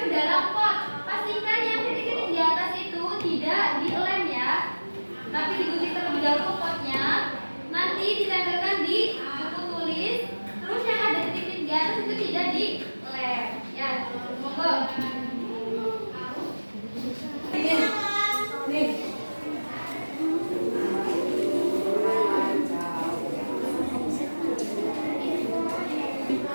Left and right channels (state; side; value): inverted; both; correlation -1.00